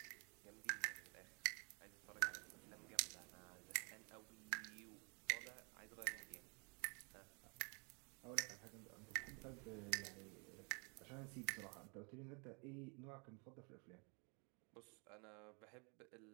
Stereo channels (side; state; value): left; quieter; 34.2 dB